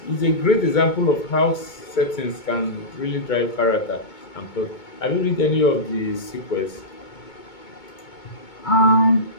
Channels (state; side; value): late; right; 2.2 ms